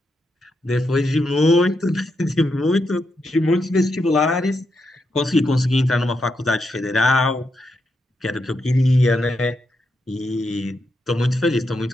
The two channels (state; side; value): normal; both; correlation 0.83